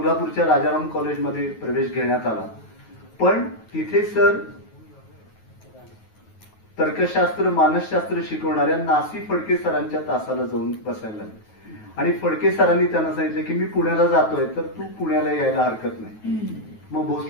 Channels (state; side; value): late; right; 9.3 ms